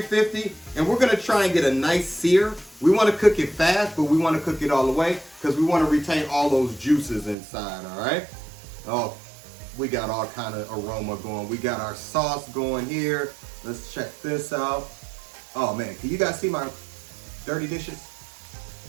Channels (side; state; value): left; drops out; at 7.4 s